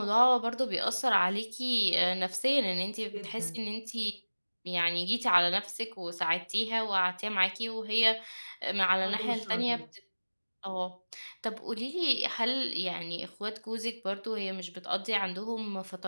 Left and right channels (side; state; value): both; inverted; correlation -1.00